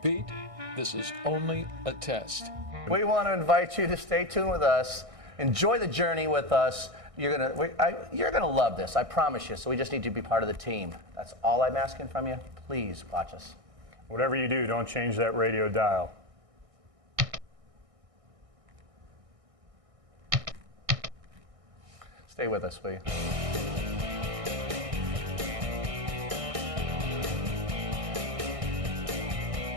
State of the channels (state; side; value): late; left; 1.6 ms